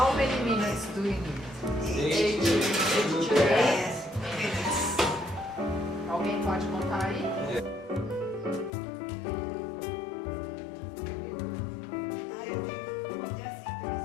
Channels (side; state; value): right; drops out; at 8.7 s